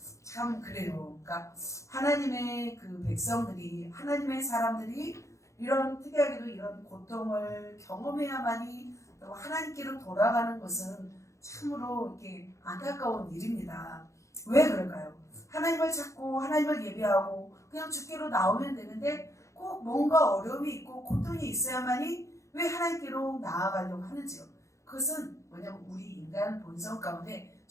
참 그래요. 그러니까 하나님의 그 백성들이, 하나님의 사람들이 이런 특이하게도 이런 고통을 경험해야만이 하나님께로 돌아가는 것은 참으로 이렇게 안타까운 일입니다. 왜 그럴까요? 하나님을 찾고 하나님을 예배하고 그냥 주께로 나오면 되는데 꼭 뭔가 어려움이 있고 고통이 있어야만이 왜 하나님께로 나아가려고 하는지요. 그것은 뭐냐면 우리 인간 본성 가운데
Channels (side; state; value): right; late; 0.15 ms